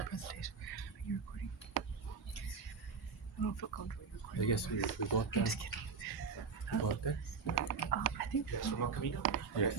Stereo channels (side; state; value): left; quieter; 5.4 dB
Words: presentation. Are you recording? I don't feel comfortable recording. I guess we go up there. I'm just kidding. Go up there. I think. Yes, from Camino. Yeah.